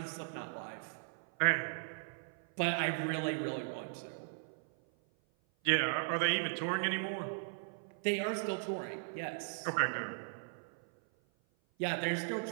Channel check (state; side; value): silent; left; 53 dB below the other